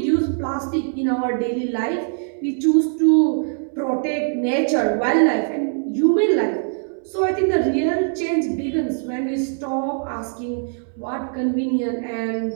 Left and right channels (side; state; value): left; silent; 63 dB below the other